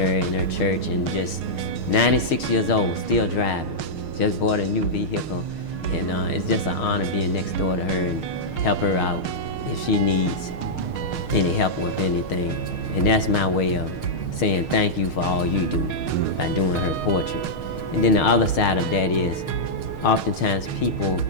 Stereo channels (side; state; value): right; late; 6.5 ms